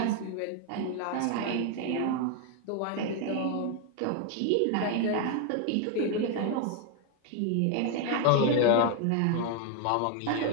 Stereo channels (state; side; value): different; both; correlation 0.01